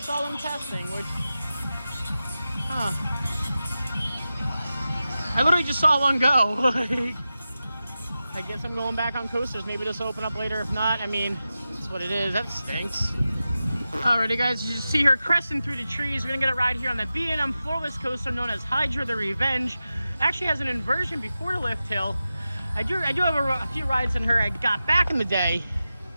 them testing, which, I literally just saw one go. I guess I'm going back on coasters. Maybe this will open up later. If not, I mean, that's what it is. That stinks. Alrighty guys, you see her cresting through the trees. We're gonna get a ride here on the B&M floorless coaster known as Hydra the Revenge. Actually has an inversion before the lift hill. I do have a few rides on her I got back in the day.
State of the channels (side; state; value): both; inverted; correlation -0.93